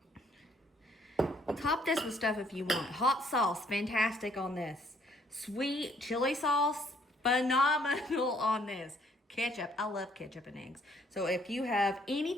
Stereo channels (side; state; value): both; normal; correlation 0.65